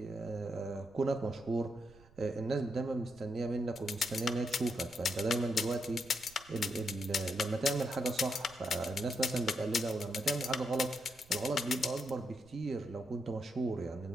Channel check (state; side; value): noise; right; rumble, 25 dB below the sound